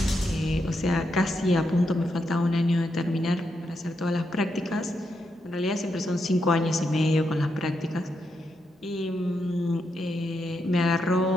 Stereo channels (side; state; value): both; normal; correlation 0.82